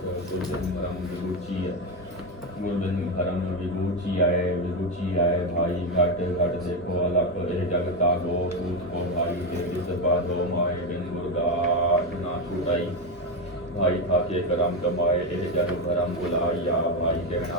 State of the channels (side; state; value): both; normal; correlation 0.10